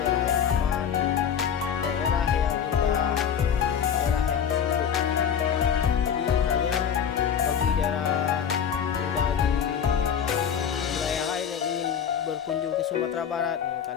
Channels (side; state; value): right; quieter; 8.1 dB